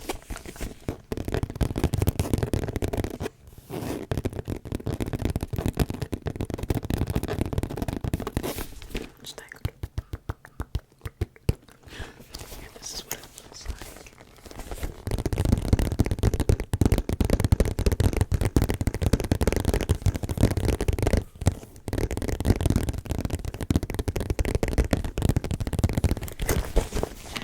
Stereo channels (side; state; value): both; identical; correlation 1.00